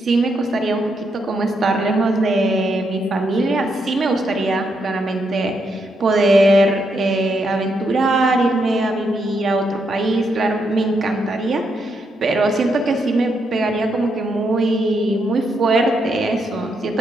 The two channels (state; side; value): normal; both; correlation 0.79